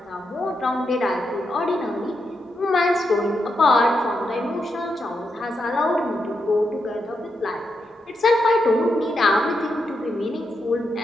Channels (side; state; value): both; normal; correlation 0.84